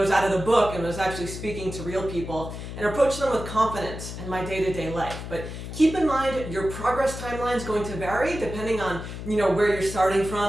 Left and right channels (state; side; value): noise; left; hum, 9 dB below the sound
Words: out of the book and was actually speaking to real people and approach them with confidence in my day-to-day life. But keep in mind, your progress timeline is going to vary depending on, where you're starting